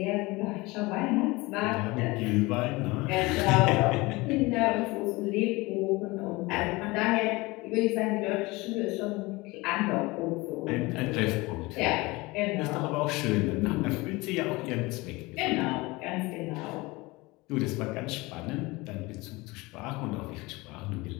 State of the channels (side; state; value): right; quieter; 22.7 dB